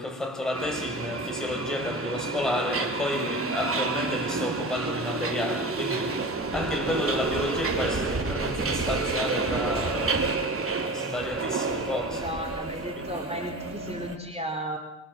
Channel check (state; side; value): normal; both; correlation 0.34